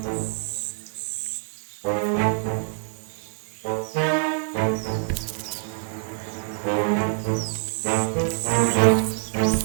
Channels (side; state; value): left; silent; 61 dB below the other